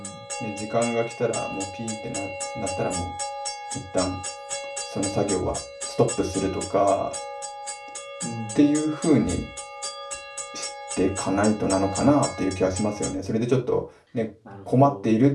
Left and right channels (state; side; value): identical; both; correlation 1.00